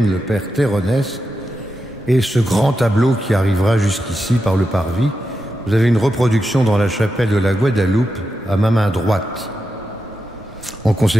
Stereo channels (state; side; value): normal; both; correlation 0.88